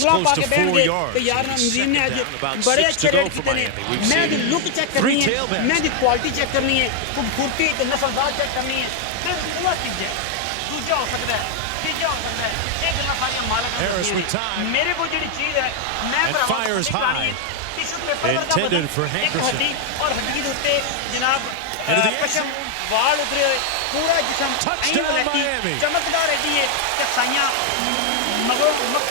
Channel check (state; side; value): different; both; correlation 0.00